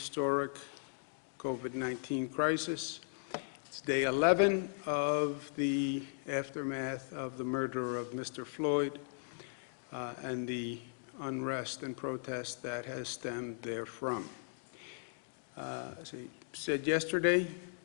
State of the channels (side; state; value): right; silent; digital silence